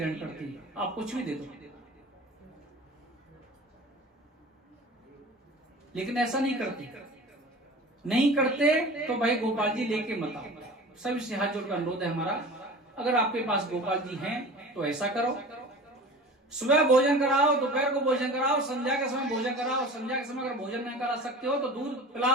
करती, आप कुछ भी दे दो। लेकिन ऐसा नहीं करते, नहीं करते तो भाई गोपाल जी लेके मत आओ। सभी से हाथ जोड़कर अनुरोध है हमारा, अगर आपके पास गोपाल जी हैं तो ऐसा करो, सुबह भोजन कराओ, दोपहर को भोजन कराओ, संध्या के समय भोजन कराओ। संध्या के समय अगर भोजन नहीं करा सकते हो तो दूध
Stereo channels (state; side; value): normal; both; correlation 0.38